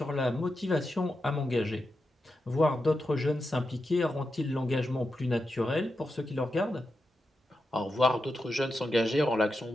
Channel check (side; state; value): both; normal; correlation 0.88